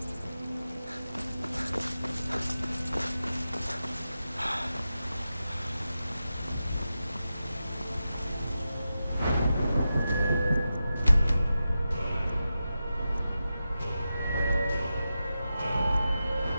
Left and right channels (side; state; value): both; inverted; correlation -0.91